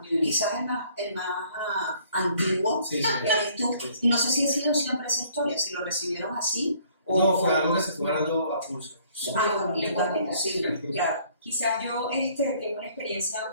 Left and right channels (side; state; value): both; inverted; correlation -0.61